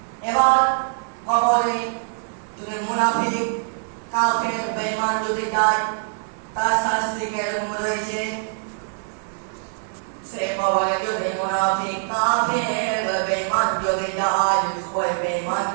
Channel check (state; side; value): silent; left; digital silence